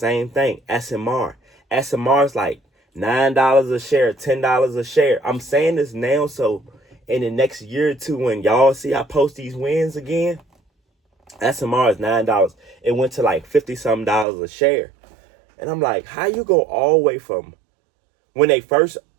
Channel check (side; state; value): left; drops out; at 14.2 s